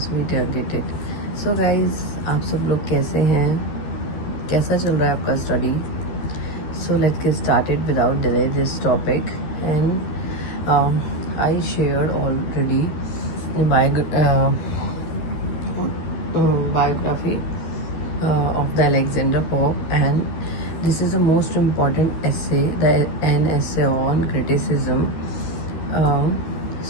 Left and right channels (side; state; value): right; late; 13 ms